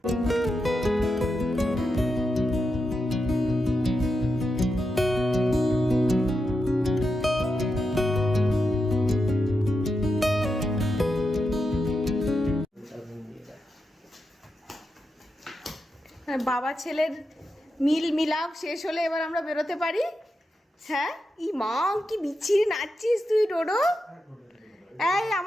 বাবা ছেলের মিলাপ শেষ হলে এবার আমরা বেরোতে পারি। হ্যাঁ, ই মা কি বিচ্ছিরি নাচছিস তুই ডোডো। এই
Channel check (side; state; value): both; normal; correlation 0.87